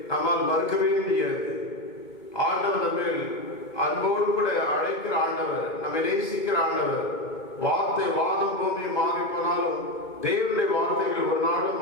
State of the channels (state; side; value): late; right; 2.2 ms